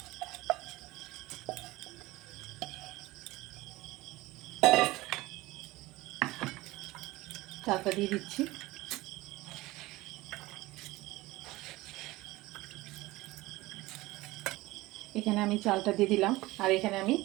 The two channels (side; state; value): left; quieter; 19.5 dB